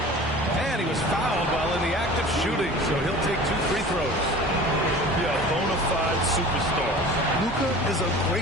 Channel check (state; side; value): normal; both; correlation 0.41